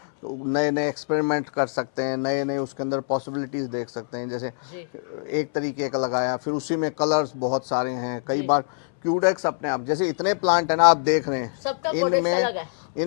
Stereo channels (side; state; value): right; silent; 62 dB below the other